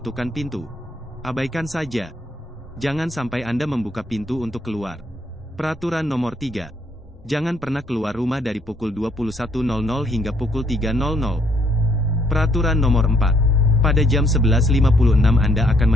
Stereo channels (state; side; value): normal; both; correlation 0.69